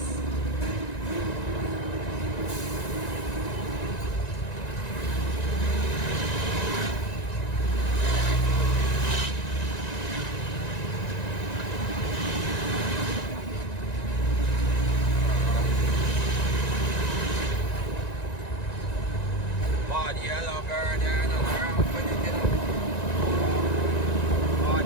Body yellow bird there, not around for it, you know.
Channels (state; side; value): late; right; 1.9 ms